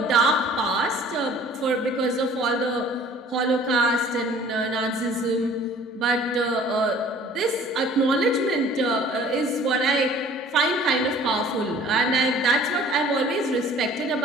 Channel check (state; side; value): normal; both; correlation 0.51